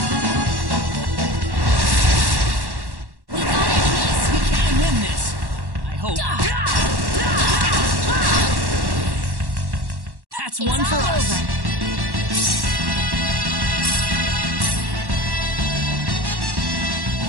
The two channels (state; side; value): late; left; 1.1 ms